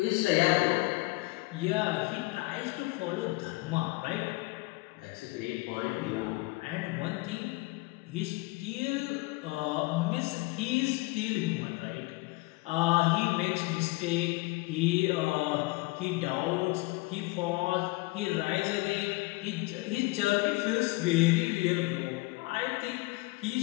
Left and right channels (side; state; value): right; quieter; 23.4 dB